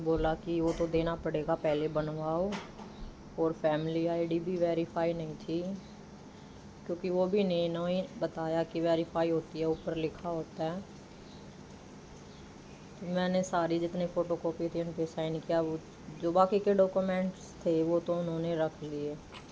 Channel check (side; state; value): both; identical; correlation 1.00